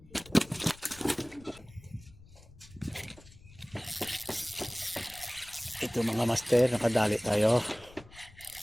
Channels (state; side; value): noise; left; rumble, 22 dB below the sound